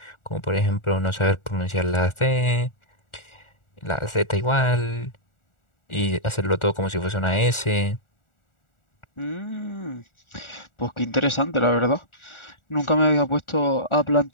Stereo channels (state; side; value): late; right; 1.4 ms